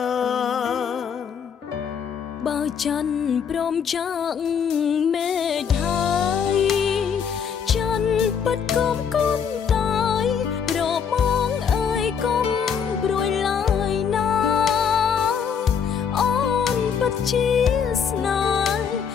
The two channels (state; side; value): quieter; right; 7.1 dB